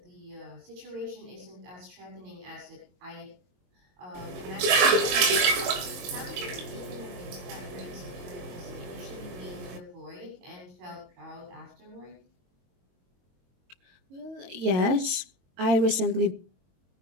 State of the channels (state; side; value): late; left; 22 ms